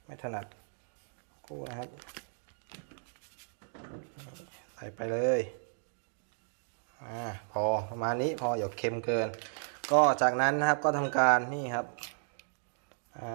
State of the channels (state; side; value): silent; left; digital silence